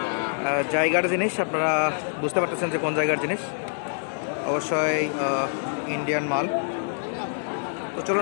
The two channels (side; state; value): right; silent; digital silence